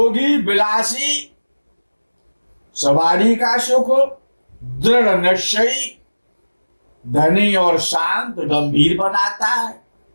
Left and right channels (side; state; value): both; inverted; correlation -1.00